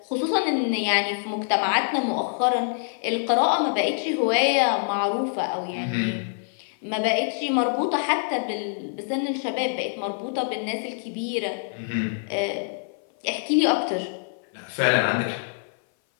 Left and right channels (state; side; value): silent; right; 58 dB below the other